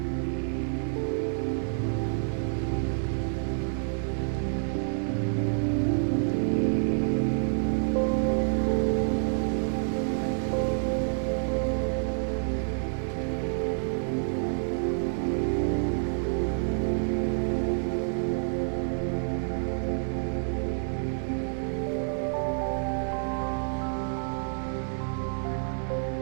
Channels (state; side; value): silent; left; digital silence